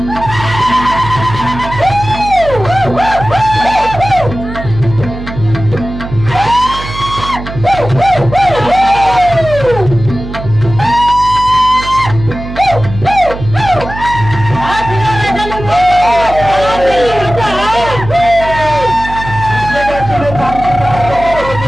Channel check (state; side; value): noise; right; hum, 10 dB below the sound